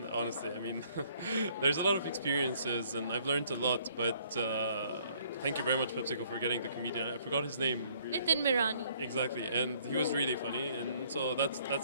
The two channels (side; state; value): both; inverted; correlation -0.62